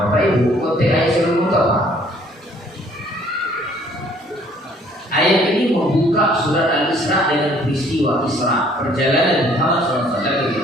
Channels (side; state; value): both; normal; correlation 0.59